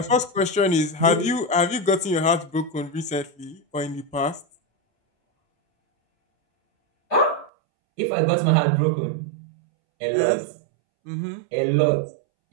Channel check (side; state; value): left; drops out; at 7.5 s